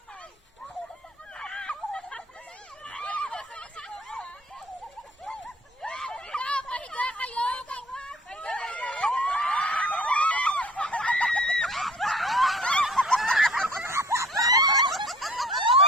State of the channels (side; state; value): both; normal; correlation 0.50